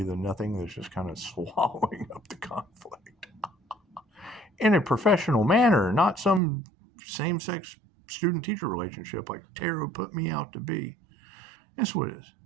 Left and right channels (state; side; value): drops out; left; at 6.4 s